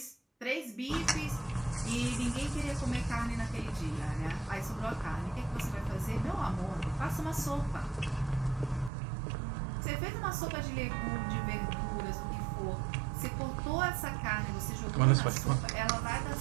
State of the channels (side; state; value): left; drops out; at 8.9 s